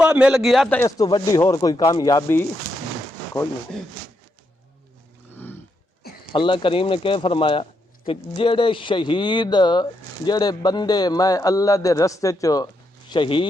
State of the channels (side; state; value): both; normal; correlation 0.81